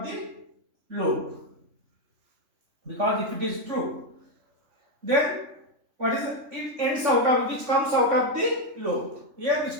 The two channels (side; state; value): left; late; 3.5 ms